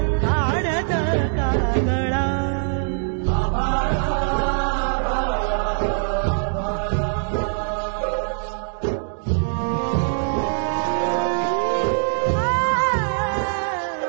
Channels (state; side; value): silent; left; digital silence